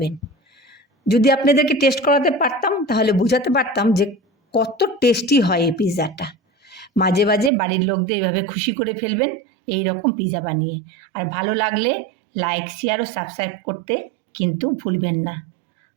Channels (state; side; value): drops out; left; at 7.5 s